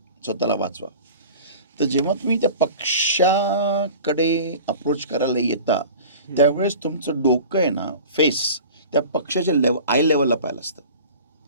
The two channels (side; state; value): both; inverted; correlation -0.40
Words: स्वतःला वाचवा. तर जेव्हा तुम्ही त्या पक्षाकडे अप्रोच करायला येता त्यावेळेस तुमचं डोकं आहे ना, फेस त्या पक्षाच्या आय लेवलला पाहिलं असतं,